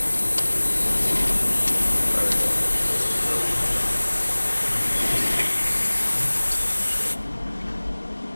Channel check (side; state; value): both; inverted; correlation -1.00